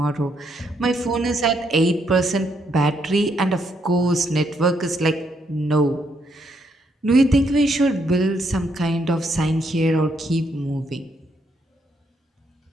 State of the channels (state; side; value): normal; both; correlation 0.75